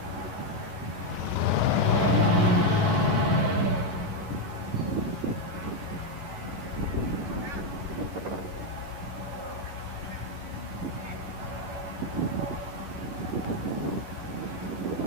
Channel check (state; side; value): late; left; 11 ms